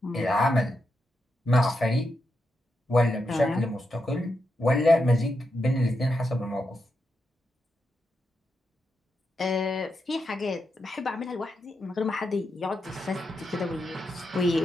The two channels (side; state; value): both; normal; correlation 0.85